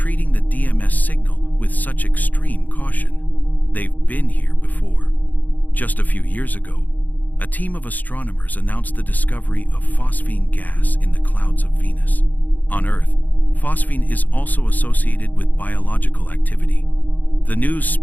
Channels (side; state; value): right; late; 0.082 ms